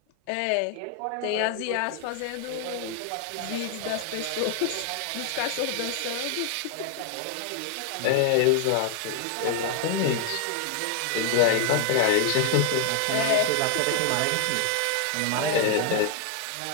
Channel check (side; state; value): both; different; correlation 0.00